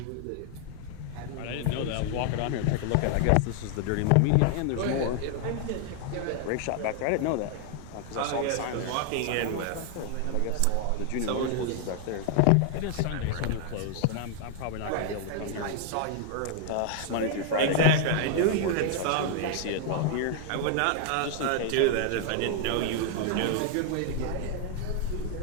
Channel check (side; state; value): both; different; correlation 0.00